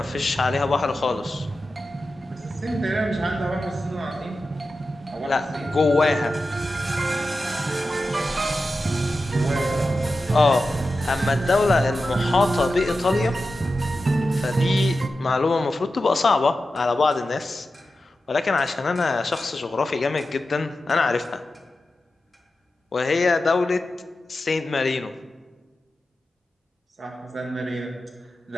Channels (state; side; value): normal; both; correlation 0.92